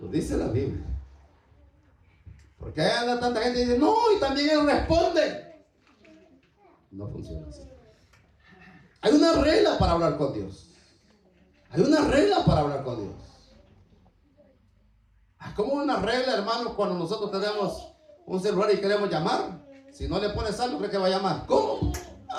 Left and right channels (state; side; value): identical; both; correlation 1.00